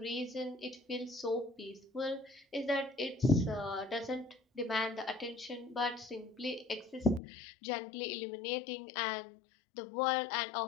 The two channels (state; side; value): drops out; right; at 7.2 s